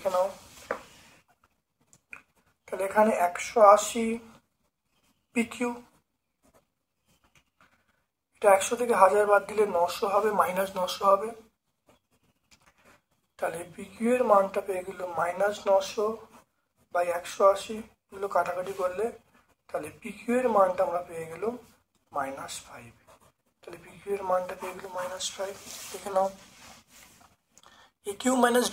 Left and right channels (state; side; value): identical; both; correlation 1.00